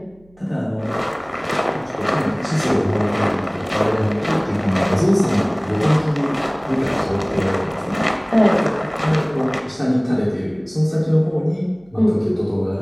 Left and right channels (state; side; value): noise; right; hum, 30 dB below the sound